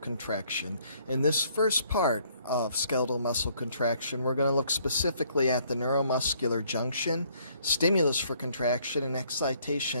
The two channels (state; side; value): inverted; both; correlation -0.64